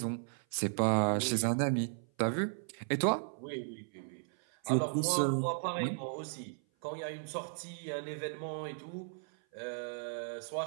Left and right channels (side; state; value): left; silent; 54 dB below the other